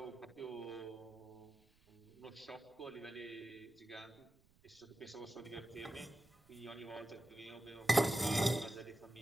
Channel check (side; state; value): right; noise; rumble, 29 dB below the sound